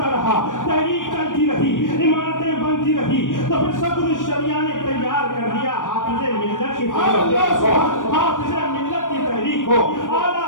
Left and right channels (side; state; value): right; late; 0.88 ms